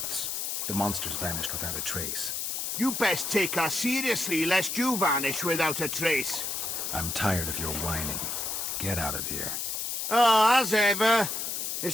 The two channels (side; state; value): left; noise; hiss, 2 dB below the sound